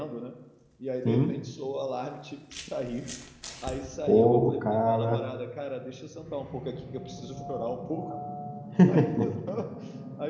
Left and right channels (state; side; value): identical; both; correlation 1.00